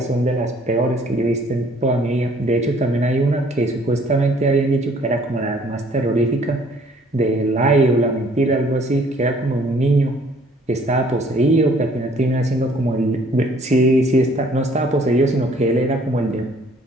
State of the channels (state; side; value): normal; both; correlation 0.59